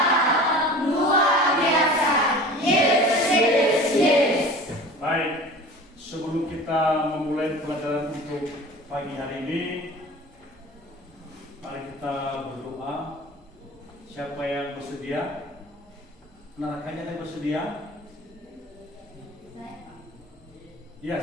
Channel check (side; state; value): both; normal; correlation 0.40